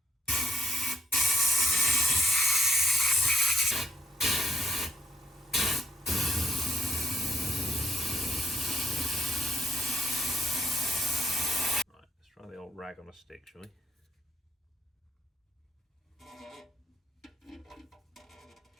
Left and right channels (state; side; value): normal; both; correlation 0.71